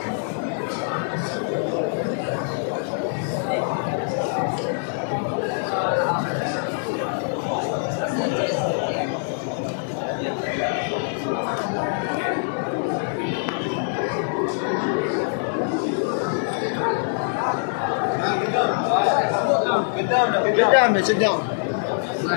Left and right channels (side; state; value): right; silent; digital silence